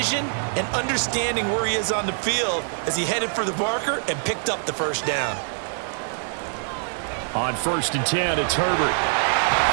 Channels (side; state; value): left; silent; 63 dB below the other